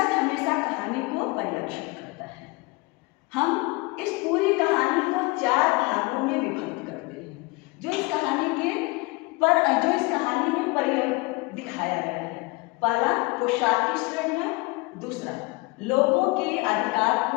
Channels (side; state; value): right; quieter; 25.0 dB